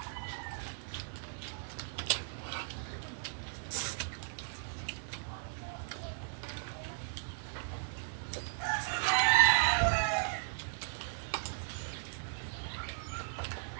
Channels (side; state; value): left; silent; digital silence